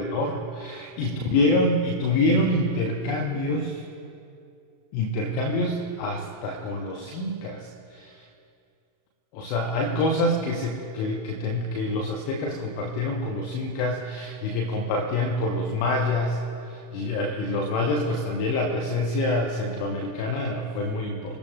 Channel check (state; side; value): late; right; 34 ms